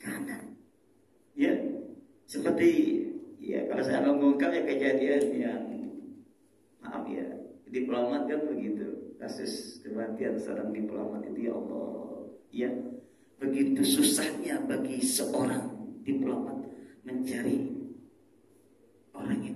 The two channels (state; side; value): identical; both; correlation 1.00